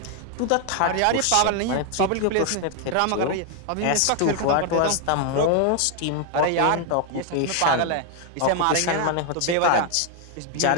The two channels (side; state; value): both; different; correlation 0.00